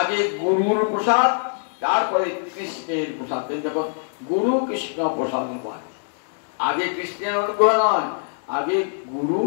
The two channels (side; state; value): right; silent; 63 dB below the other